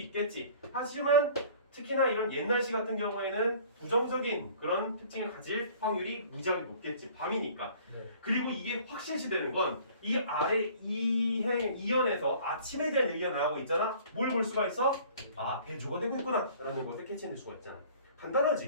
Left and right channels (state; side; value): inverted; both; correlation -0.50